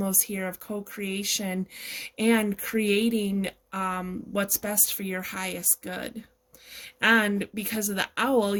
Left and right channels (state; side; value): identical; both; correlation 1.00